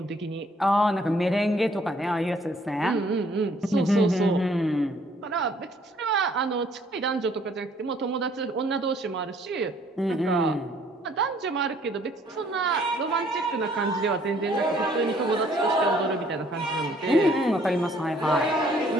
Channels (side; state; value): both; normal; correlation 0.62